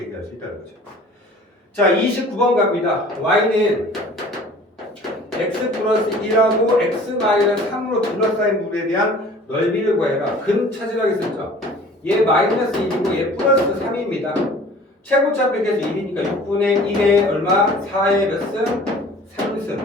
얘기할 수 있다는 거죠. 자, 29번 갑니다. y는 x 플러스 1하고 x 마이너스 3으로 둘러싸인 물에 대한 넓이를 구해라. 근 찾으라고 했었죠. 얘 마이너스 1이고 얘 플러스 3입니다. 최고차 빼기해서 1이니까 6분의 1에 얼마? 4의 몇 승?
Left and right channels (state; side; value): normal; both; correlation 0.47